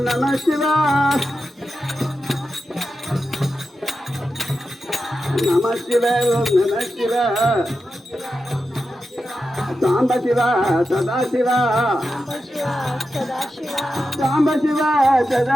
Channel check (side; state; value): both; normal; correlation 0.90